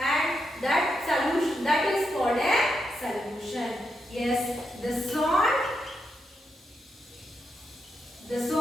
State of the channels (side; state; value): both; normal; correlation 0.84